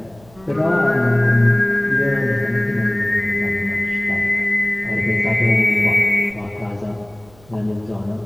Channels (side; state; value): right; noise; hum, 27 dB below the sound